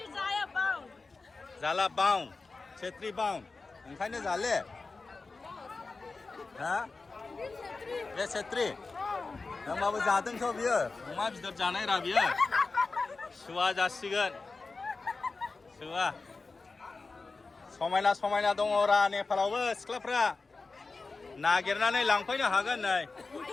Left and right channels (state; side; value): quieter; right; 3.9 dB